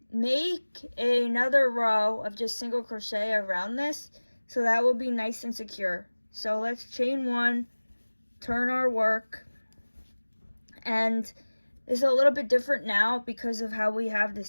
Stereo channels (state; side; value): inverted; both; correlation -1.00